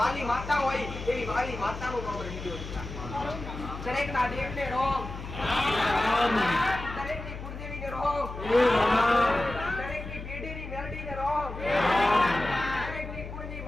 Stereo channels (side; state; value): left; noise; hum, 9 dB below the sound